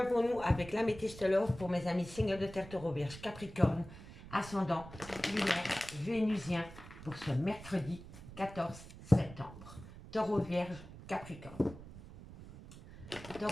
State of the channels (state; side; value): noise; right; rumble, 15 dB below the sound